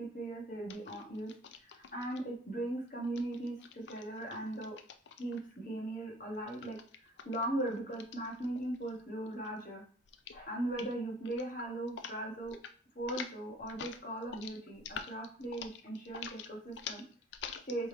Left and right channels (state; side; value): normal; both; correlation 0.51